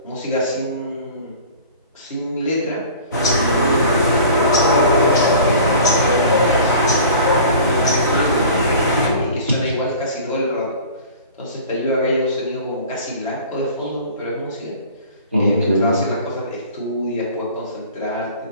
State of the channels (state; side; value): inverted; both; correlation -0.43